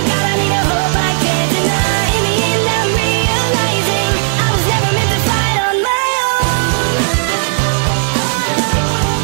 God, I need a hope I can't deny. In the end I'm realizing I was never meant to fight on my own.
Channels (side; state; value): left; silent; digital silence